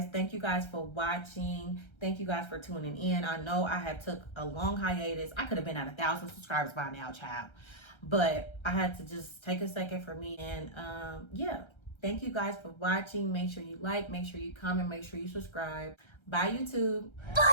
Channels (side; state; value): right; late; 1.3 ms